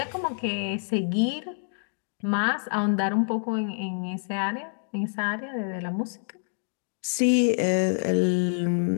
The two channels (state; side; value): silent; right; digital silence